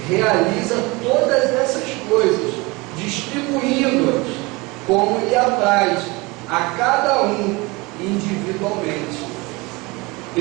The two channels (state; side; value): quieter; left; 24.7 dB